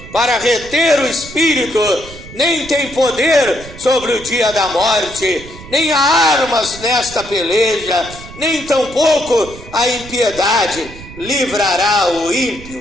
para reter o Espírito, nem tem poder sobre o dia da morte, nem há armas nesta peleja, nem tampouco a impiedade livrará o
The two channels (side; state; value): right; noise; rumble, 16 dB below the sound